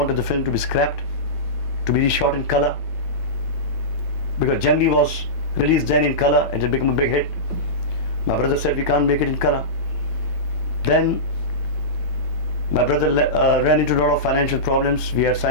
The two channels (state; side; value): late; right; 9.0 ms